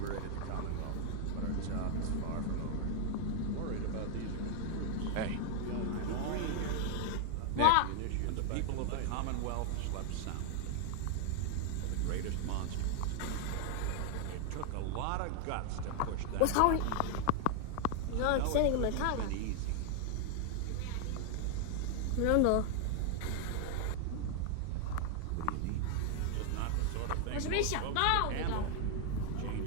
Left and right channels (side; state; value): both; different; correlation 0.00